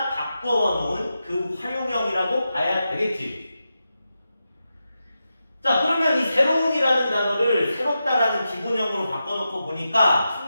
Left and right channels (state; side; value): inverted; both; correlation -0.89